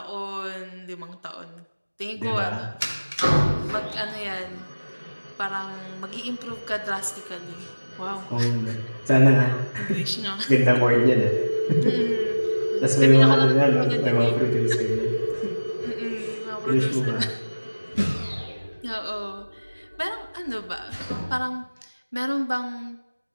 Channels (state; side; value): inverted; both; correlation -1.00